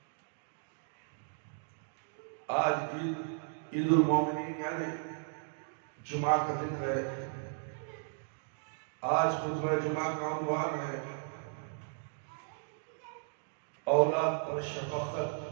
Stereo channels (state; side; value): silent; left; digital silence